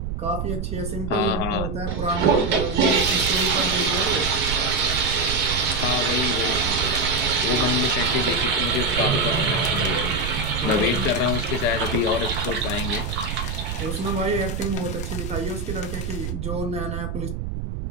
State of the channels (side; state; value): right; noise; rumble, 5 dB below the sound